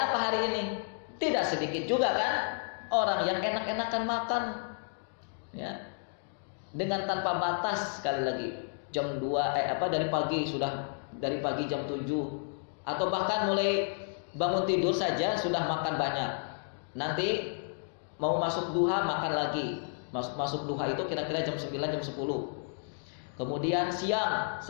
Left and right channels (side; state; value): right; silent; digital silence